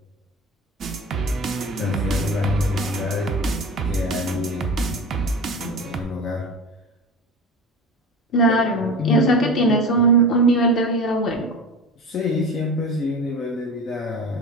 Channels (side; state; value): both; normal; correlation 0.32